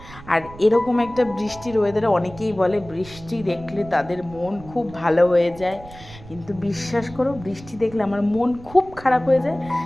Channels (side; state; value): right; noise; rumble, 18 dB below the sound